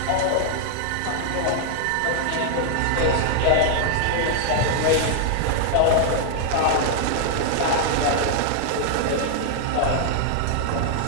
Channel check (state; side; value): different; both; correlation 0.00